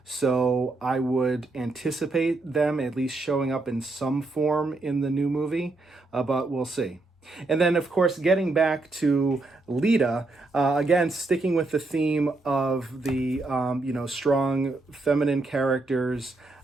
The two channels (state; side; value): quieter; left; 3.2 dB